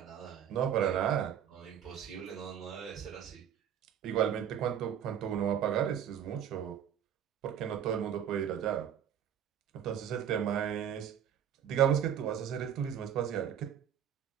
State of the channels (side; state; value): left; quieter; 9.2 dB